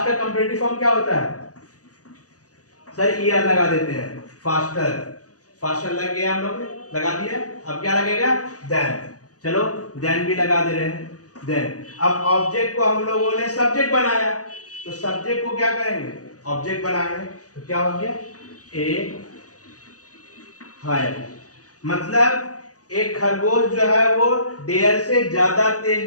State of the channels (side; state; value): right; late; 0.67 ms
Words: का कंपैरेटिव फॉर्म क्या होता है, सर ईआर लगा देते हैं, फास्टर। फास्टर लग गया, हम लोग ने लगा दिया। अब क्या लगेगा, देन। चलो देन भी लगा दे रहे हैं, देन। अब ऑब्जेक्ट को हम लोगों ने सब्जेक्ट बनाया, तो सब्जेक्ट को क्या करेंगे, ऑब्जेक्ट बनाएंगे। तो क्या हो गया, ए हायर, मतलब एक खरगोश जो है वो डेयर से ज्यादा